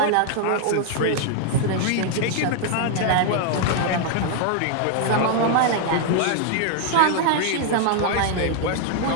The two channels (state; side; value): different; both; correlation 0.00